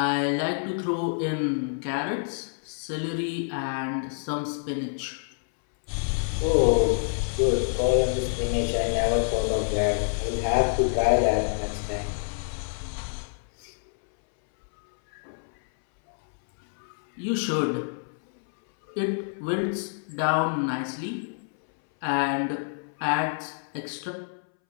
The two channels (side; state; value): right; silent; 60 dB below the other